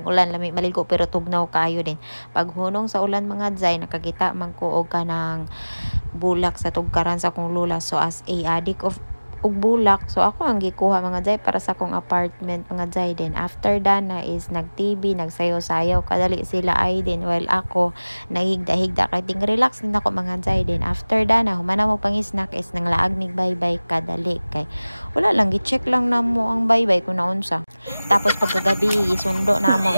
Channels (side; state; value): both; inverted; correlation -0.99